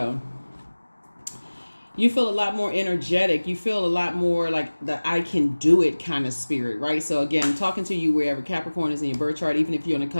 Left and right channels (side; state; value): both; inverted; correlation -1.00